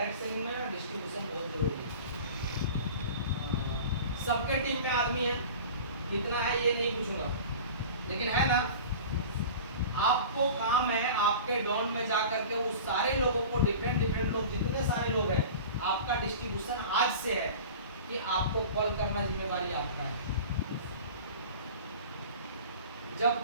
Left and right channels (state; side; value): inverted; both; correlation -0.37